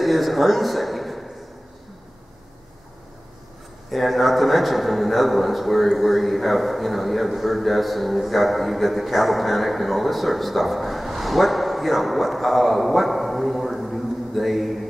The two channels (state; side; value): normal; both; correlation 0.97